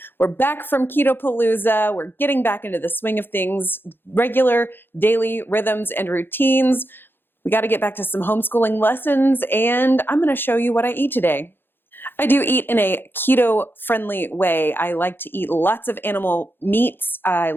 We're back from Ketopalooza. We're getting back into the swing of things, regular daily rhythms and routines. We got to get back to some homeschooling lessons, and I'm going to show you what I eat today. I do eat in a keto-friendly way. I like to eat lots of animal meats. I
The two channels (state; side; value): late; right; 0.10 ms